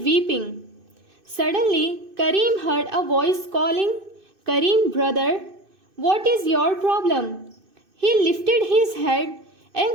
weeping. Suddenly, Karim heard a voice calling, "Karim, brother, what is your problem?" He lifted his head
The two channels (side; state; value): left; late; 2.6 ms